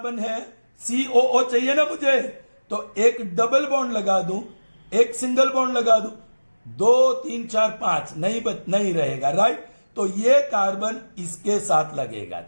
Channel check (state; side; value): inverted; both; correlation -1.00